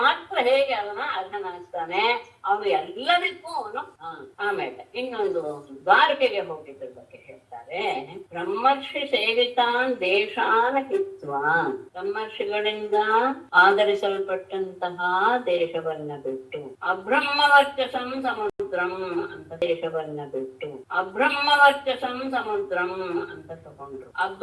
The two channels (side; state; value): both; identical; correlation 1.00